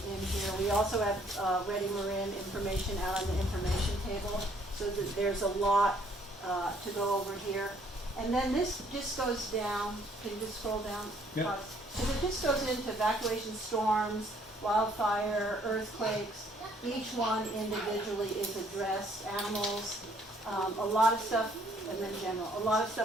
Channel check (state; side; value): normal; both; correlation 0.64